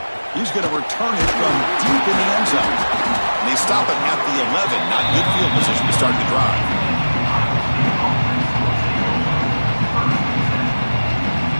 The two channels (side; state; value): both; inverted; correlation -1.00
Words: He's going to return it from deep in the end zone. And they stop it at the 11. Not good field position to start the drive.